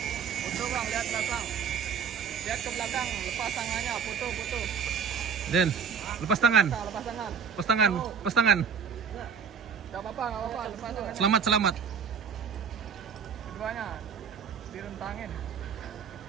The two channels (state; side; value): quieter; left; 6.8 dB